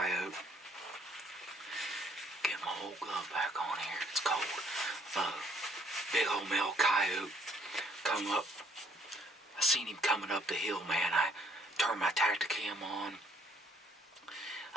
Get my old glove back on here. It's cold. Big old male coyote come up. I seen him coming up the hill, man. I turned my Tacticam on.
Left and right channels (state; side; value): normal; both; correlation 0.64